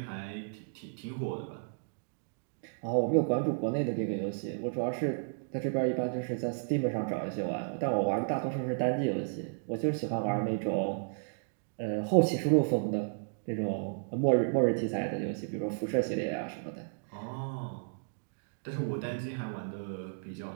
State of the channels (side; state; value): left; silent; digital silence